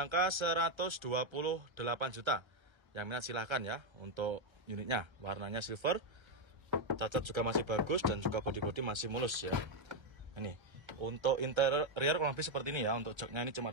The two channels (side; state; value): left; late; 1.3 ms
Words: 128 juta. Yang minat silahkan ya untuk unitnya. Warnanya silver, cacat juga masih bagus, dan juga body-body masih mulus ya. Ini untuk interior kurang lebih seperti ini ya. Untuk joknya ini cuma